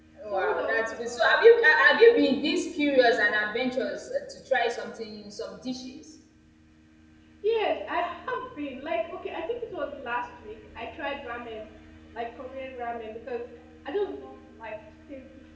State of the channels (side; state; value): both; identical; correlation 1.00